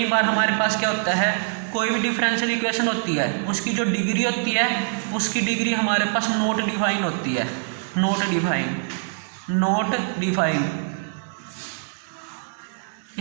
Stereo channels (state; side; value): silent; left; digital silence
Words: बार हमारे पास क्या होता है, कोई भी डिफरेंशियल इक्वेशन होती है उसकी जो डिग्री होती है, उसकी डिग्री हमारे पास नॉट डिफाइन होती है, नॉट डिफाइन।